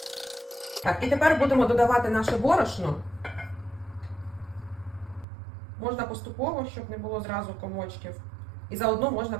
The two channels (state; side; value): drops out; left; at 5.2 s